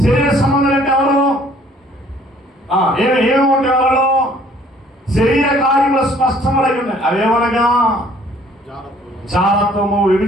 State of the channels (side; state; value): both; normal; correlation 0.58